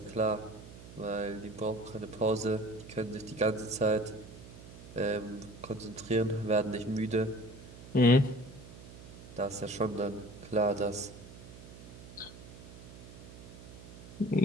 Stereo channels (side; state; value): right; noise; hum, 16 dB below the sound